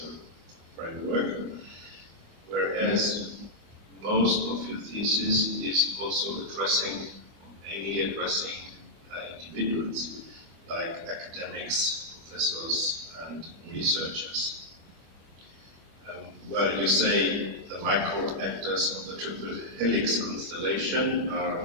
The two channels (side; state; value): left; late; 25 ms